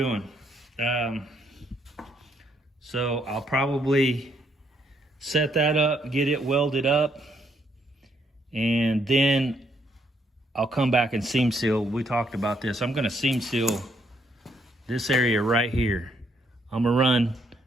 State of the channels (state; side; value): normal; both; correlation 0.72